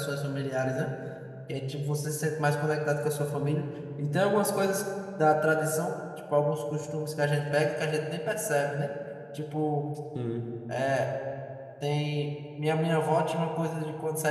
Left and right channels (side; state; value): both; identical; correlation 1.00